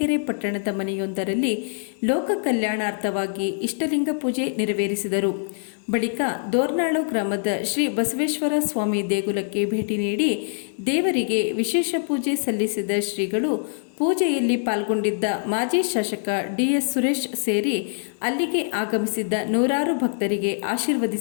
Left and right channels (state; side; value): silent; right; 63 dB below the other